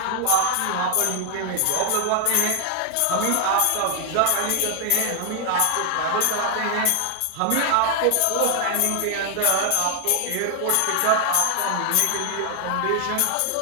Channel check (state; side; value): different; both; correlation 0.00